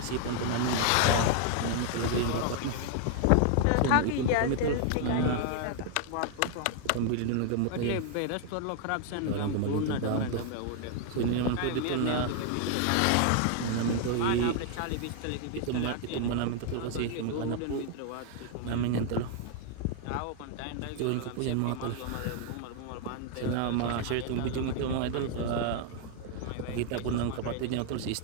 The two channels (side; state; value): both; different; correlation 0.00